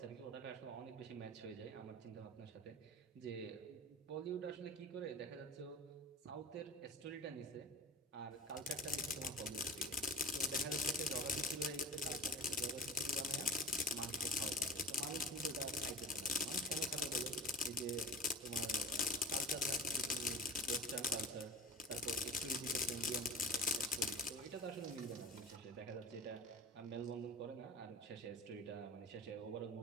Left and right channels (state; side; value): normal; both; correlation 0.34